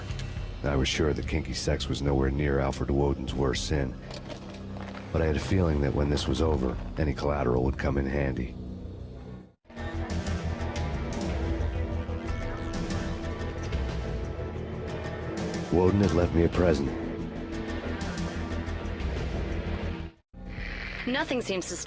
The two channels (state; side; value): identical; both; correlation 1.00